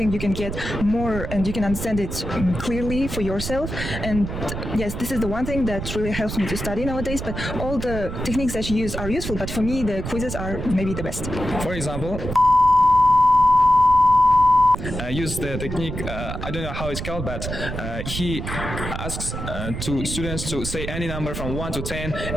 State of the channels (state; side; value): noise; right; rumble, 6 dB below the sound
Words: you can get more and you can understand it clearly for yourself. And yes, this is the one thing that really helps me to study nowadays. But all the techniques that you use are useful, but for me, the quizzes are maybe the best. For example, use the technique, I don't know how it's called, but he asks to students to say any number from 1 to 10